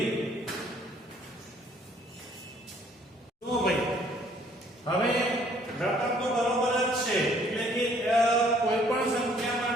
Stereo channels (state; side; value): normal; both; correlation 0.61